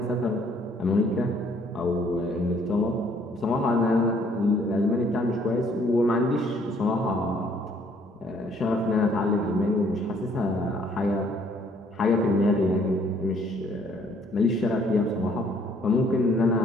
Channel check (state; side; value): normal; both; correlation 0.63